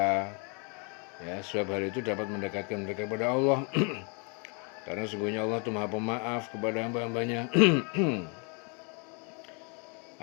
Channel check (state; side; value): quieter; right; 35.5 dB